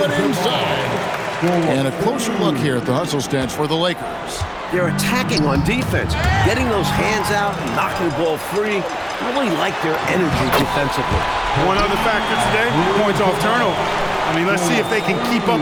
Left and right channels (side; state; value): both; identical; correlation 1.00